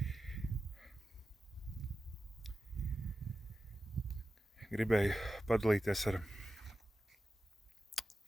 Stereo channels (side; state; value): both; normal; correlation 0.93